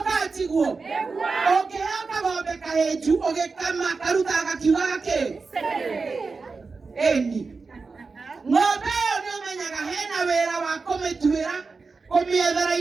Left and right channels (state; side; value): quieter; left; 4.4 dB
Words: katiguo ũngĩheo kagombe kahĩnju ũgĩkama karutaga gakiugaga kĩ ĩni ng'ombe ĩyo nĩũmenyaga hena wĩra wa kũmĩtuĩra kũmĩethera